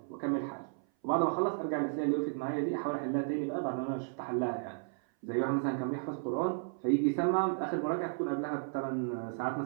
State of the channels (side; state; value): left; silent; 55 dB below the other